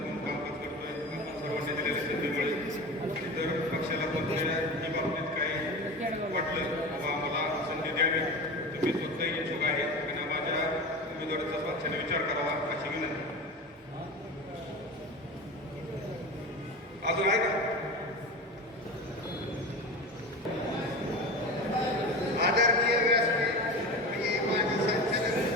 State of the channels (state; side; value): normal; both; correlation 0.28